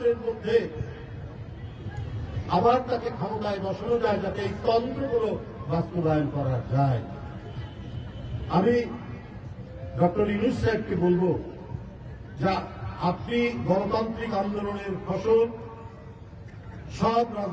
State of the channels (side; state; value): both; identical; correlation 1.00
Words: মধ্যে আবার তাকে ক্ষমতায় বসানো যায়, যাতে এই তন্ত্রগুলো বাস্তবায়ন করা যায়। আমি ডক্টর ইউনূস সাহেবকে বলবো, যা আপনি গণতান্ত্রিক আন্দোলনের ফসল, সব